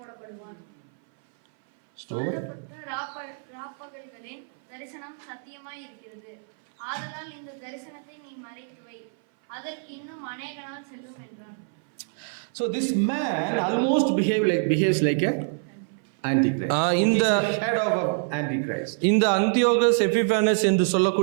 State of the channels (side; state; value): left; silent; 58 dB below the other